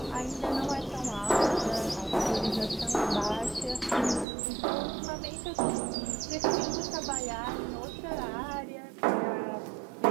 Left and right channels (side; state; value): left; drops out; at 4.2 s